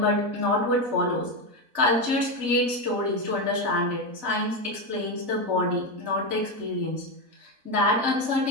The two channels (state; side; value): late; left; 4.0 ms